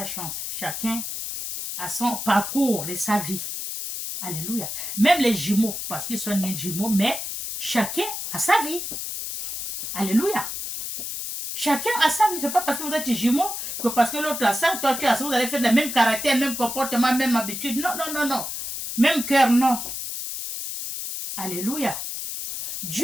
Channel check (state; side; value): noise; left; hiss, 5 dB below the sound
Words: chance. Chacun a son parcours de sa vie. Alléluia. Même les jumeaux, parce qu'ils sont nés jumeaux, mais chacun a sa vie. Alléluia. Chacun a sa vie. Ce n'est pas parce que vous êtes jumeaux que parce que l'autre a ça, toi tu as ça, vous allez faire le même caractère, même comportement, même habitude. Non, non, non, non. Même cœur, non. Alléluia.